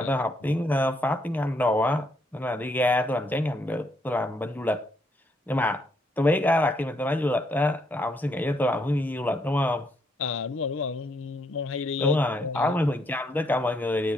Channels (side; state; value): both; normal; correlation 0.74